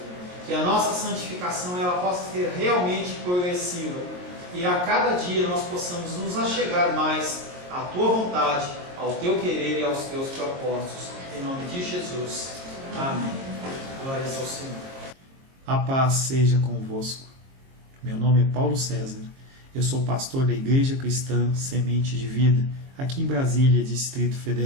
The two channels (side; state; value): left; late; 22 ms